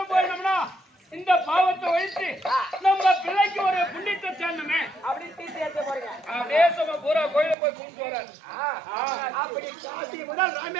போயிடணும்னா இந்த பாவத்தை ஒழித்து நம்ம பிள்ளைக்கு ஒரு புண்ணியத்தை சேர்ந்தமே அப்படி தீர்க்க யாத்திரை போறீங்க தேசமா பூரா கோயிலும் போய் கும்பிட்டு வராரு அப்படி காசி முதல்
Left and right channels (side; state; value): left; drops out; at 7.6 s